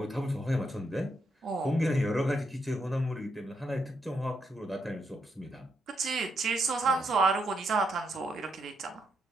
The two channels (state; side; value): normal; both; correlation 0.79